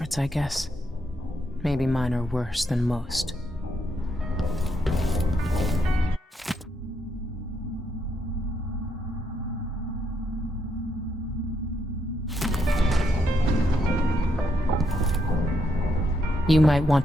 I guess. Maybe mine are worse than most. You might want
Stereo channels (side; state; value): both; normal; correlation 0.77